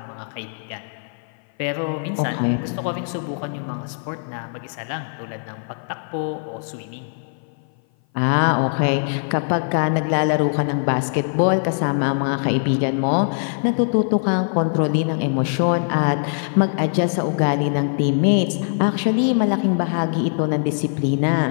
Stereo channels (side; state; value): right; silent; 57 dB below the other